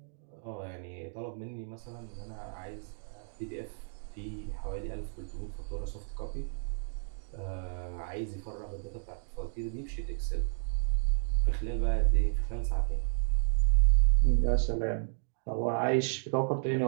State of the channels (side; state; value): left; silent; digital silence